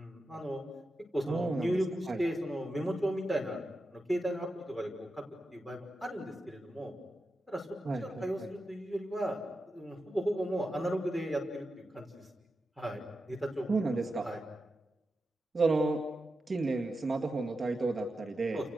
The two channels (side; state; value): both; normal; correlation 0.90